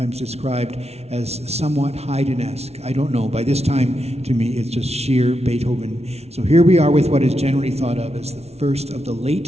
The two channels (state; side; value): late; left; 0.31 ms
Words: described as somewhat Haydn-esque. I don't know. By this time, to me, it's just sheer Beethoven. So here we are with what is generally thought of as the first of the